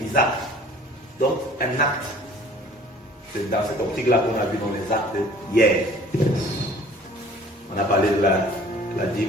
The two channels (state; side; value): normal; both; correlation 0.50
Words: Isaac. Donc, un acte. C'est dans cette optique-là qu'on a vu dans les actes hier. On a parlé de la